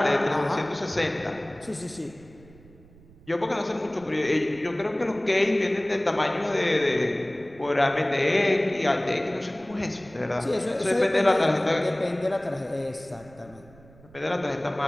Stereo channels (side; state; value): right; noise; rumble, 24 dB below the sound